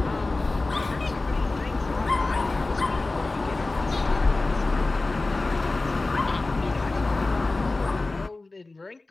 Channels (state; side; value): quieter; right; 3.2 dB